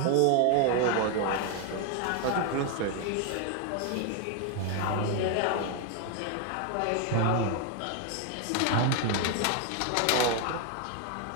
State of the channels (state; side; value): different; both; correlation 0.01